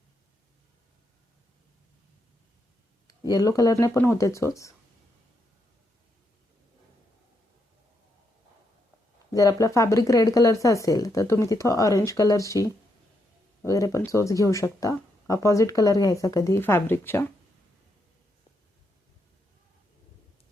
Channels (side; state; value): both; normal; correlation 0.80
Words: येलो कलरने पण होते चोच. जर आपला फॅब्रिक रेड कलरचा असेल तर तुम्ही तिथं ऑरेंज कलरची वगैरे पण चोच घेऊ शकता. अपोजिट कलर घ्यायचा कधी फॅब्रिकच्या.